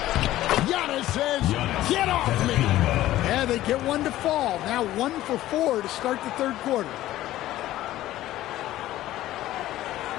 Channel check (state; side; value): quieter; right; 14.8 dB